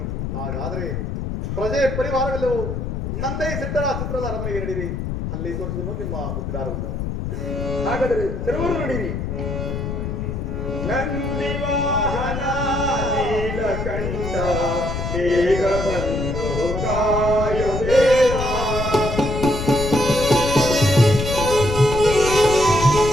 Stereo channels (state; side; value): noise; left; rumble, 4 dB below the sound